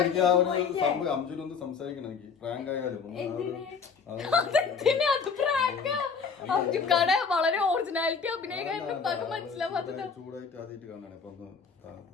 അംജുനൊന്ന് സംസാരിക്കണം എനിക്ക്. പ്രാങ്ക് ആയാലും അംജുക്കാടെ വളരെ ഒറിജിനാലിറ്റി അഭിനയിക്കാൻ മനസ്സിലാവാത്തത്. ചൂടായിട്ട് ആദ്യമായിട്ട് കാണാണ് ഇപ്പൊ.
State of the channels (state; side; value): quieter; right; 5.7 dB